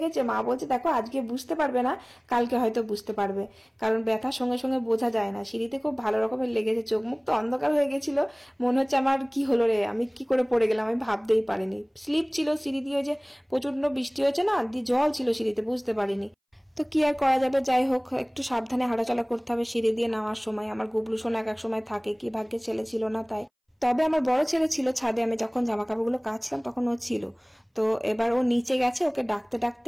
মা বলছে দেখো আজকে বুঝতে পারবে না, কালকে হয়তো বুঝতে পারবে, কারণ ব্যথার সঙ্গে সঙ্গে বোঝা যায় না। সিঁড়িতে খুব ভালো রকমের লেগেছে, চোখ মুখ তো অন্ধকার হয়ে গেছিল, মনে হচ্ছে আমার কি হলো রে, আমি কি করে পড়ে গেলাম, আমি ভাবতেই পারিনি। স্লিপ ছিল সিঁড়ি দিয়ে, যে প্রচন্ড বৃষ্টি হয়েছে না, দিয়ে জল ছিল সিঁড়িতে, বুঝতে পারিনি। তো কি আর করা যাবে, যাই হোক একটু সাবধানে হাঁটাচলা করতে হবে সিঁড়ি দিয়ে নামার সময়। আমার গুবলু সোনা এক সময় থাকে, কি ভাগ্যে ছেলে ছিল না তাই। তবে আমার বড় ছেলে ছিল ছাদে, আমি যখন জামা কাপড়গুলো কাচলাম তখন ও ছিল। তো এবার ও নিচে গেছে, ওকে ডাকতে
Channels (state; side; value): identical; both; correlation 1.00